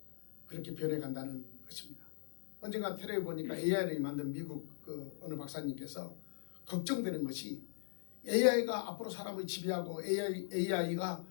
그렇게 변해간다는 것입니다. 언젠가 테레비에 보니까 AI를 만든 미국 어느 박사님께서 걱정되는 것이 AI가 앞으로 사람을 지배하고 AI가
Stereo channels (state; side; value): silent; right; digital silence